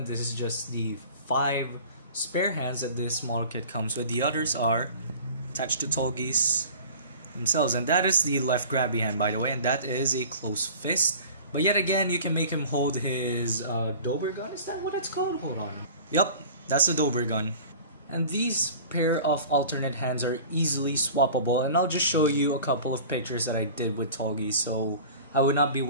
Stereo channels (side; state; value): both; inverted; correlation -0.41